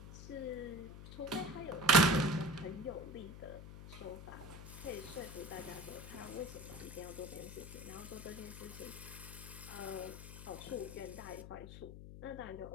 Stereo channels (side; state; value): left; noise; hum, 12 dB below the sound